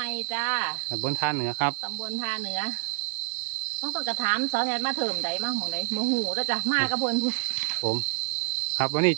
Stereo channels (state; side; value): silent; left; digital silence